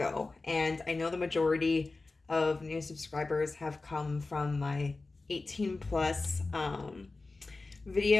And I know the majority of new subscribers have come from my 18 plus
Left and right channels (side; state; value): right; quieter; 3.5 dB